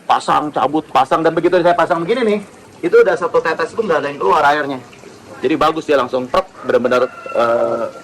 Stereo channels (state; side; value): identical; both; correlation 1.00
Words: pasang, dan begitu saya pasang begini nih, itu udah satu tetes pun nggak ada yang keluar airnya. Jadi bagus dia langsung truk, benar-benar